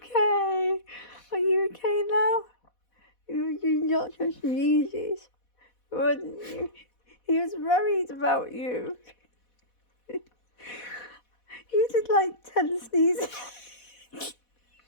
Are you okay now? You not just sneezes, wasn't you? He was worried about you. You did like 10 sneezes.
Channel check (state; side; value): late; right; 4.1 ms